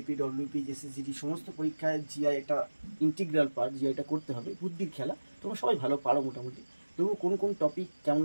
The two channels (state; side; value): inverted; both; correlation -1.00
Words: ডব্লিউপি, এসএসজিডি সমস্ত পরীক্ষায় জিআই একটা ইন্টিগ্রাল পার্ট। জিআইটা করতে হবে, বুদ্ধির খেলা। তোমরা সবাই ভালো পারো মোটামুটি, তবু কোন কোন টপিক